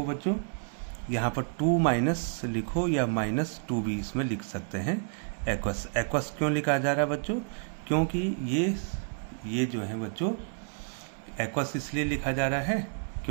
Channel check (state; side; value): silent; left; digital silence